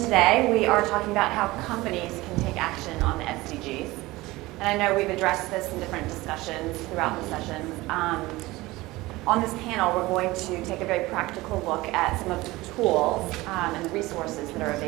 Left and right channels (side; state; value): left; quieter; 19.8 dB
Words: We are talking about how companies can take action on the SDGs. And I know we've addressed this in different discussions throughout the session. On this panel, we're going to take a very practical look at some of the tools and the resources that are